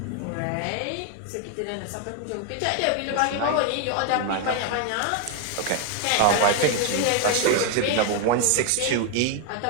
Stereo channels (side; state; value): both; different; correlation 0.01